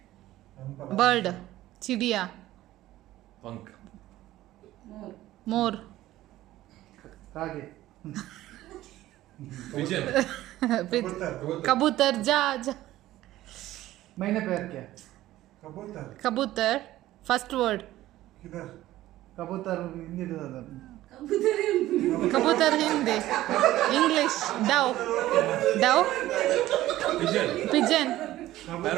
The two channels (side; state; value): left; quieter; 15.2 dB